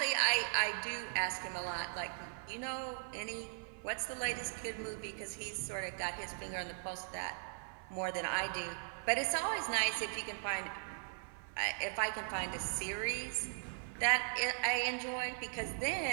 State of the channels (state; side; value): silent; left; 52 dB below the other